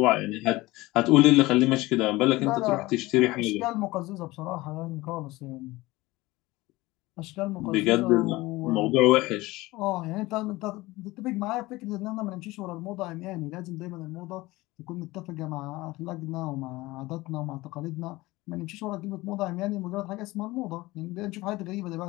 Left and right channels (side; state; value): right; quieter; 20.0 dB